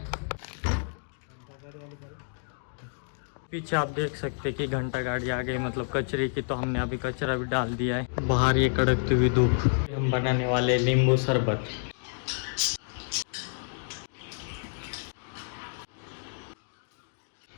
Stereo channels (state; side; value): silent; right; digital silence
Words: पीछे आप देख सकते कि घंटा गाड़ी आ गई मतलब कचरे की, तो हमने अभी कचरा भी डाल दिया है। बाहर ये कड़कती हुई धूप। हम बनाने वाले नींबू शरबत।